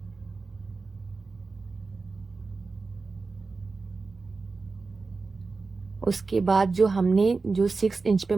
उसके बाद जो हमने जो 6 इंच पे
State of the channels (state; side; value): quieter; left; 4.1 dB